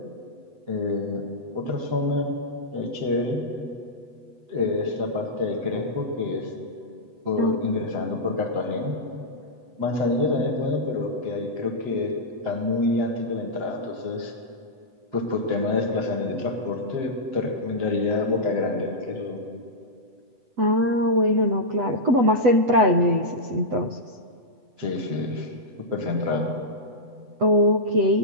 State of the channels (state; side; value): late; left; 8.0 ms